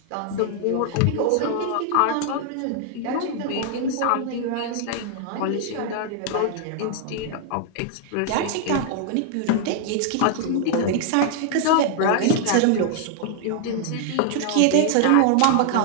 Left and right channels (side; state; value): both; different; correlation 0.00